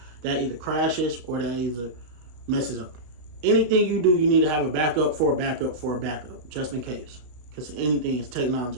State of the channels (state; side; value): late; left; 33 ms